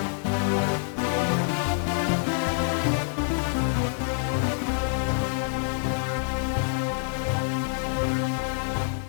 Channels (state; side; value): silent; right; 61 dB below the other